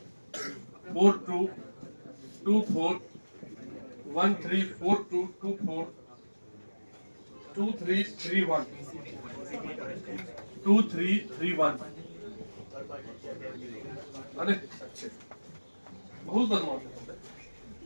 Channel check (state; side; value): inverted; both; correlation -1.00